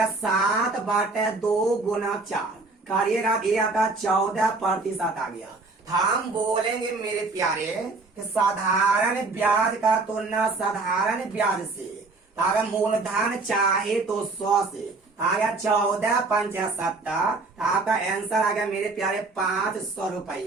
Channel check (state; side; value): quieter; left; 3.6 dB